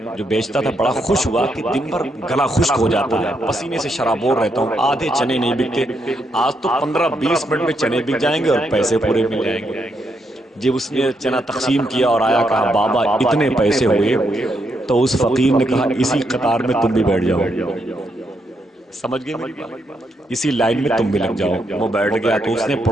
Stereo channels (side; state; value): both; normal; correlation 0.79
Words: جو بیچتا تھا بڑا خوش ہوا کہ دن بھر گلا خشک ہو جاتا ہے، پسینے سے شرابور رہتا ہوں، آدھے چنے نہیں بکتے، آج تو 15-20 منٹ میں چنے بک جائیں گے اور پیسے پورے مل جائیں گے۔ جب اس نے چنا تقسیم کیا اور آیا، کہا بابا اتنے پیسے ہوئے، تو اس فقیر نے کہا اسی قطار میں تم بھی بیٹھ جاؤ۔ سمجھ گئے میری بات؟ اسی لائن میں تم بھی لگ جاؤ۔ وہ بیٹھ گیا تو اس نے